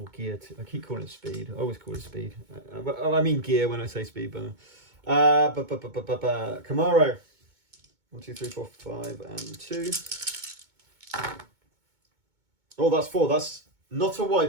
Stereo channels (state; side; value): late; left; 2.2 ms